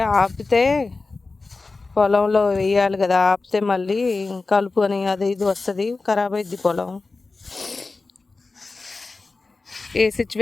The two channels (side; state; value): right; quieter; 3.8 dB